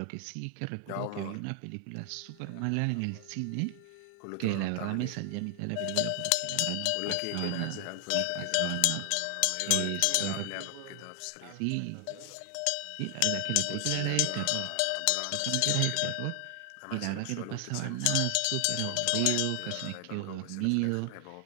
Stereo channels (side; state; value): both; different; correlation 0.00